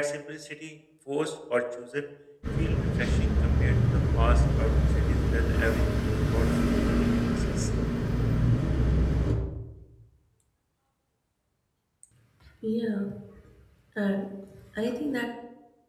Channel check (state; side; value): identical; both; correlation 1.00